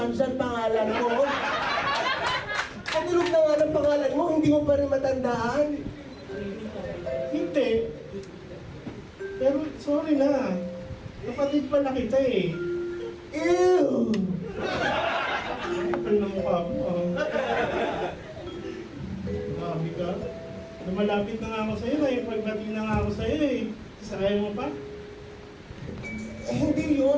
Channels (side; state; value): both; identical; correlation 1.00